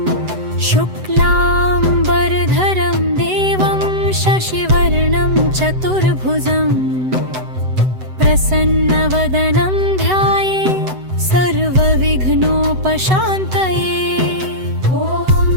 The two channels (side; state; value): left; late; 7.9 ms